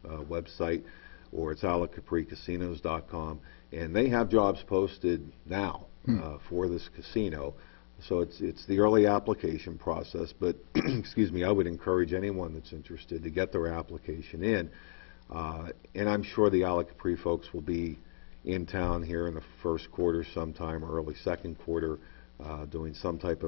website, or it's isleofcapricasinos.com. And they have jobs posted now for this casino. So it's the early application process. But, excuse me, I would encourage anyone that's interested to get their application in. And I'm sure the Isle of Capri folks will be in town here in the first quarter sometime, or early second quarter, doing some type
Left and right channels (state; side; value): silent; right; digital silence